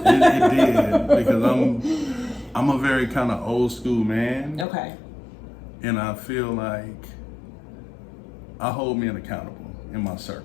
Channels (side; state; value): right; drops out; at 4.7 s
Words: did, because I'm a very kind of old school man. Okay. And I feel like I hold men accountable in my